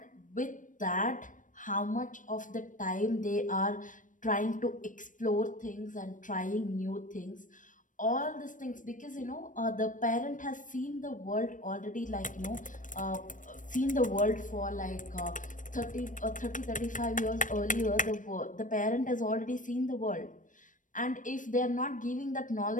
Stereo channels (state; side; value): late; right; 0.38 ms